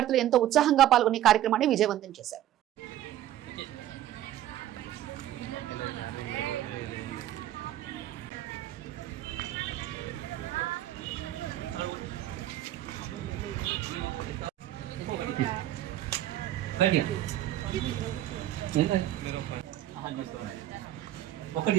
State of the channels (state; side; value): quieter; left; 13.0 dB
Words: ఎంతో ఉత్సాహంగా పాల్గొని కార్యక్రమాన్ని విజయవంతం చేశారు. ఒకటి